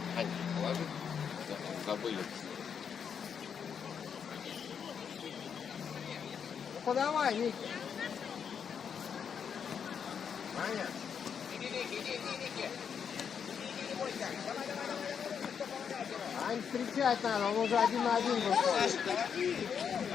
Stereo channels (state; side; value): quieter; right; 7.2 dB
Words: Положи. Забыли. Ну подавай, Ники. Ань, встречать надо, он уже 1 на 1 выходит.